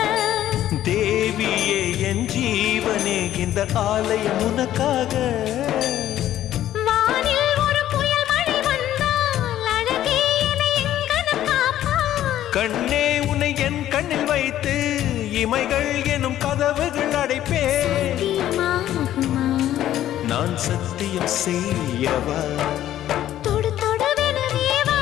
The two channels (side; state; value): right; quieter; 12.5 dB